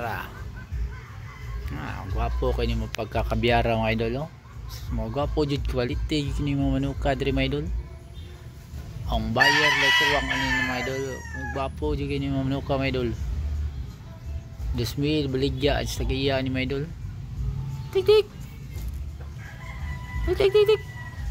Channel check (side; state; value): both; identical; correlation 1.00